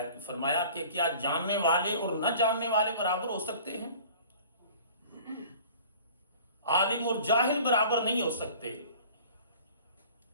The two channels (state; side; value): inverted; both; correlation -0.46